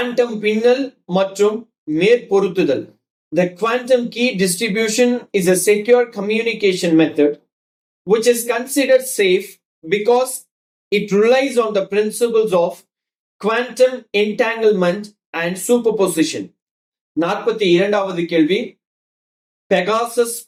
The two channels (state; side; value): identical; both; correlation 1.00